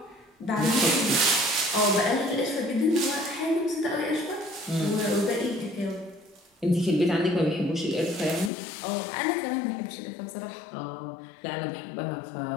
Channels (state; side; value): drops out; right; at 8.5 s